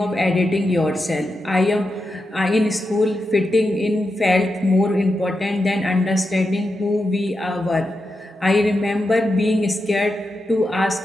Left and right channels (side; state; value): both; normal; correlation 0.88